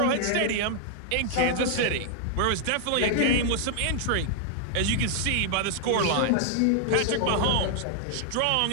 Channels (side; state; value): both; different; correlation 0.00